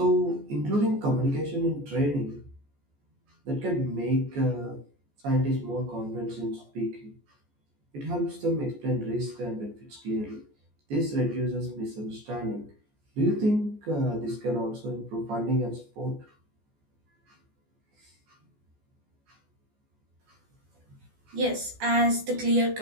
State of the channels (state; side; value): late; left; 14 ms